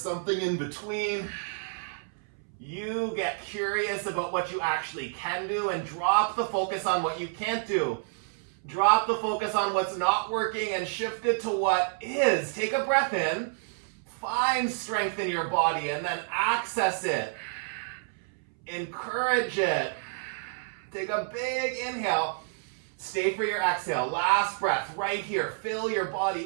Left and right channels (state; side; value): silent; left; 58 dB below the other